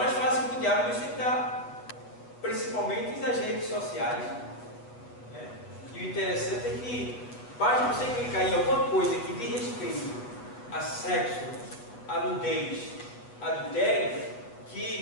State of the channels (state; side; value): late; right; 8.4 ms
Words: fácil para o diabo nos tentar. Principalmente nas redes sociais. Né? E o interessante é que basta você clicar em alguma coisa que diz respeito a sexo, a nudez, adultério,